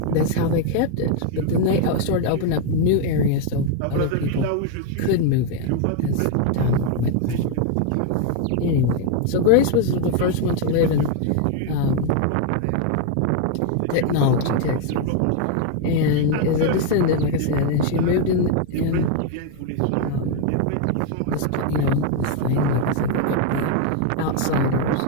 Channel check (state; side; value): different; both; correlation 0.01